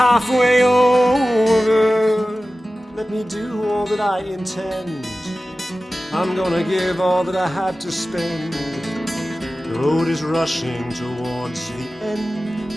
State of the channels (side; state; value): both; normal; correlation 0.96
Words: over. Let me do all that I intend. I'm gonna give all that I have to spend. The road is rushing towards the end,